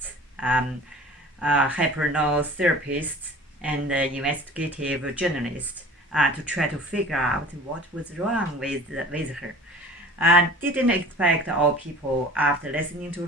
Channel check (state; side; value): normal; both; correlation 0.43